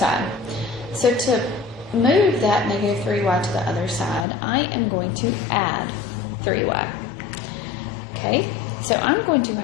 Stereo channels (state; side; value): drops out; right; at 4.2 s